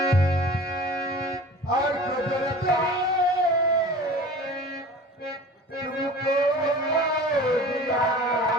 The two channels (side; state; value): both; normal; correlation 0.40